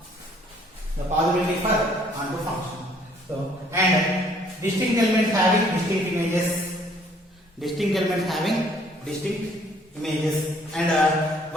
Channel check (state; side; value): normal; both; correlation 0.61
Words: The possibility for onto function. So and distinct elements having distinct images. Distinct elements having distinct images. And